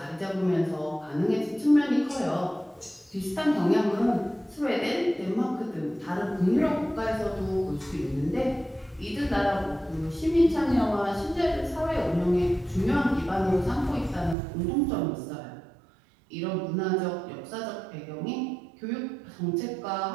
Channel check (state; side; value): drops out; left; at 14.4 s